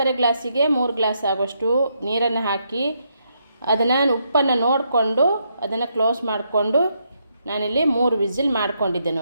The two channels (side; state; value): both; inverted; correlation -0.78